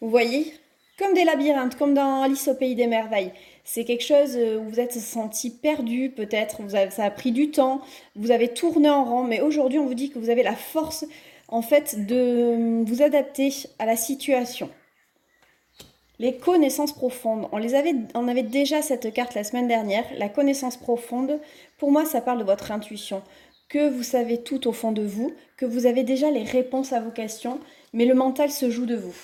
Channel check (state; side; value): identical; both; correlation 1.00